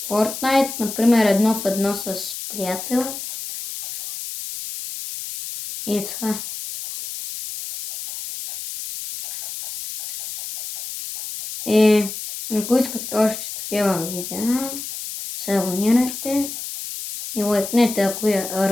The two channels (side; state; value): left; noise; hiss, 8 dB below the sound